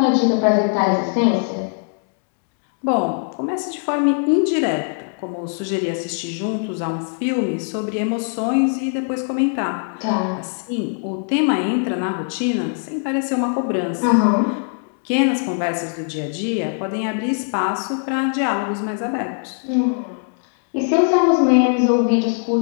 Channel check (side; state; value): right; silent; 65 dB below the other